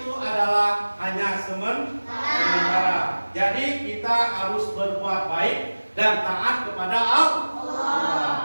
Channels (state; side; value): inverted; both; correlation -1.00